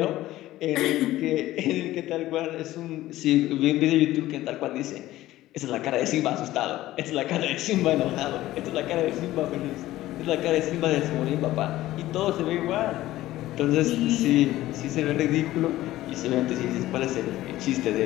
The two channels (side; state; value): right; quieter; 15.6 dB